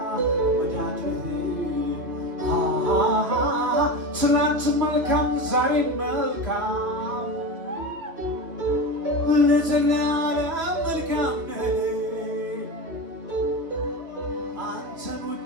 ወዳድርህ ትናንት መልካም ዛሬ መልካም ለዘላለም መልካም ነህ አንተን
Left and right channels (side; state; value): left; late; 2.5 ms